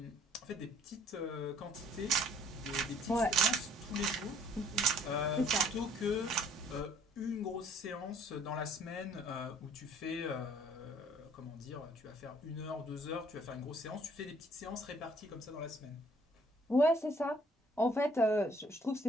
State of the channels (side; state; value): both; normal; correlation 0.59